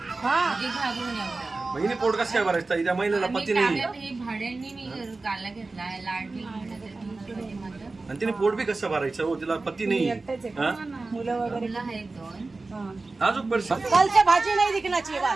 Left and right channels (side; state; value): left; quieter; 3.5 dB